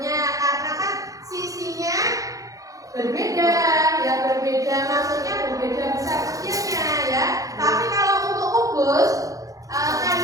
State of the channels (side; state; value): left; late; 0.17 ms